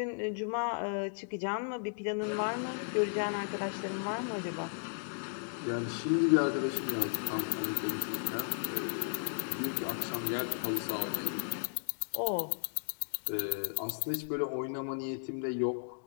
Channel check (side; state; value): right; silent; digital silence